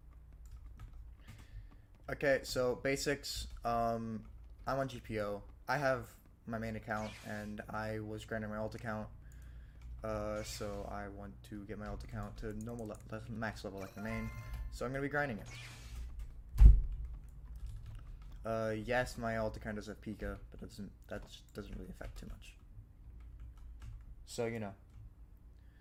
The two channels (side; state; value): both; identical; correlation 1.00